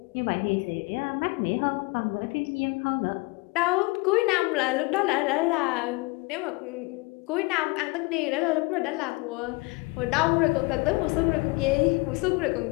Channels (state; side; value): quieter; right; 25.7 dB